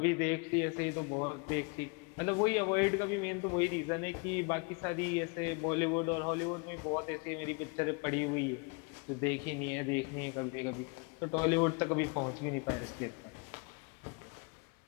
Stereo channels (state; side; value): quieter; right; 32.6 dB